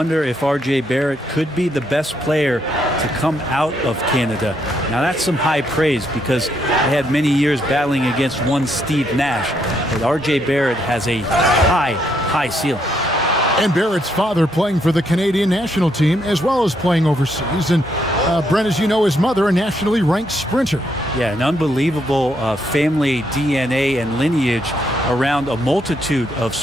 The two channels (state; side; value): normal; both; correlation 0.75